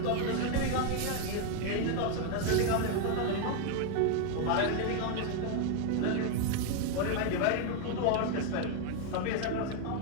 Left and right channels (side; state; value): both; different; correlation 0.00